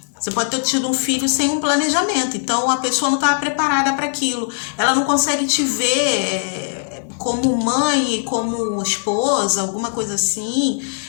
você pode ter tido um filho sem um planejamento, então a pessoa não estava preparada para aquilo, ela não consegue te ver como mãe, como esposa, alguma coisa assim,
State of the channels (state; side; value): silent; right; digital silence